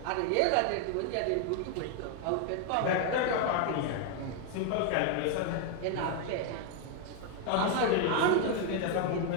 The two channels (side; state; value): both; different; correlation 0.00